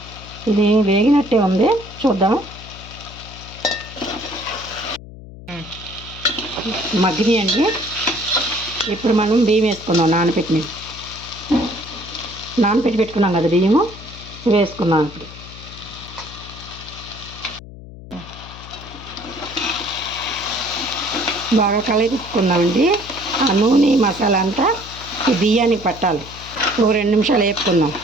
ఇది వేగినట్టే ఉంది, చూద్దాం. మగ్గినాయండి. ఇప్పుడు మనం బియ్యం వేసుకుందాం. నానపెట్టి పెట్టుకున్నాం కదా బియ్యము, వేసుకున్నాం. ఇప్పుడు బాగా కలిపుకుందామండి. ఆ నూనె మసాలా అంతా ఈ బియ్యానికి పట్టాలి. ఒక 2 నిమిషాలు వేపుకుందాం.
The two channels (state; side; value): noise; left; hum, 16 dB below the sound